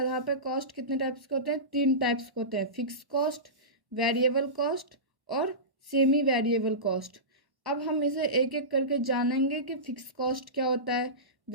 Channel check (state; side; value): late; left; 1.1 ms